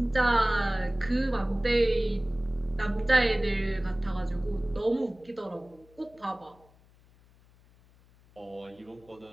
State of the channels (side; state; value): left; noise; hum, 29 dB below the sound